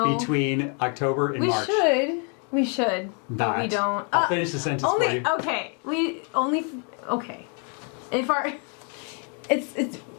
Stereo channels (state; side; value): quieter; right; 39.1 dB